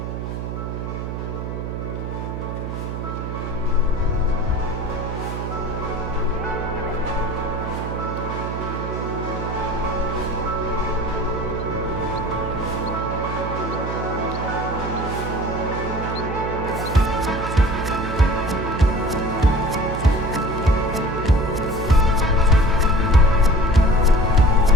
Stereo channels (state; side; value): noise; right; hum, 5 dB below the sound